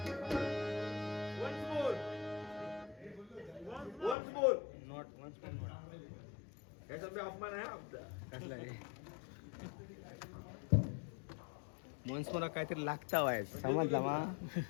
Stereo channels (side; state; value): right; drops out; at 4.2 s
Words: Once more. Not once more. याचा बी अपमान आहे आमचा. कसला रे मनस मला काहीतरी लागता वाय समजला मा